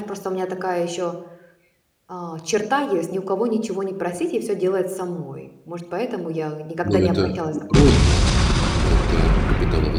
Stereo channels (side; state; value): both; identical; correlation 1.00